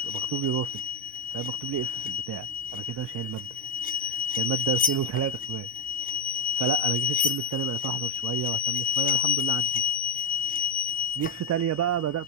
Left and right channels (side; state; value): both; normal; correlation 0.07